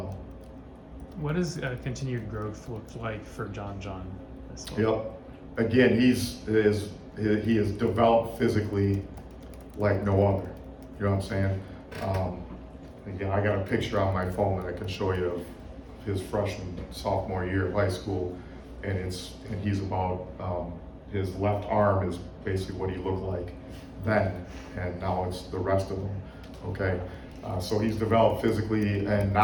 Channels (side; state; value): both; identical; correlation 1.00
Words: What does continued growth look like for John this fall? Yep. Again, he is developed physically like no other. You know what I'm saying? Again, I got a picture on my phone that I can show you of his sophomore year of high school, and he's about his left arm is basically what he looked like then, and now it's the rest of him. Okay, so he's developed physically, and